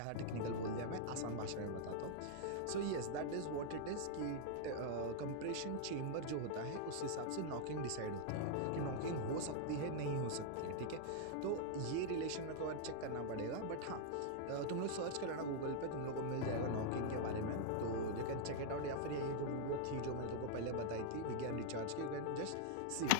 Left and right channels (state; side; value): different; both; correlation -0.01